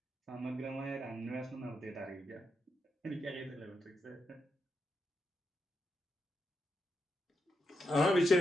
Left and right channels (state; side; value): normal; both; correlation 0.84